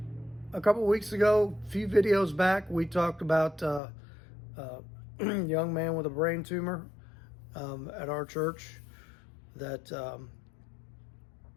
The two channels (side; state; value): right; drops out; at 3.8 s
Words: a couple of weeks ago, a few videos back, we talked about a young man with a brain tumor at our church that